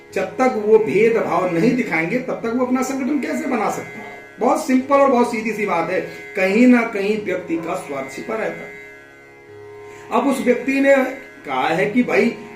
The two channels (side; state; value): both; identical; correlation 1.00